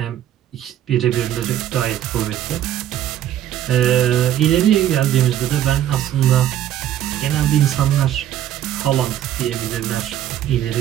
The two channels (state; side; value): quieter; left; 11.5 dB